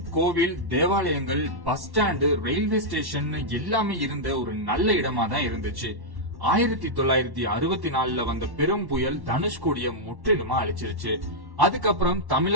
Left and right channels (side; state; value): left; late; 1.1 ms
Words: கோவில், தேவாலயங்கள், பஸ் ஸ்டாண்டு, ரயில்வே ஸ்டேஷன் எல்லாமே இருந்த ஒரு நல்ல இடமா தான் இருந்துச்சு. 1964 வந்த பெரும் புயல் தனுஷ்கோடிய முற்றிலுமா அழிச்சிருச்சு. அதுக்கப்புறம்